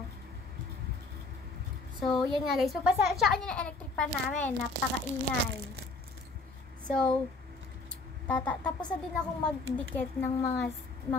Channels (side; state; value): right; quieter; 3.4 dB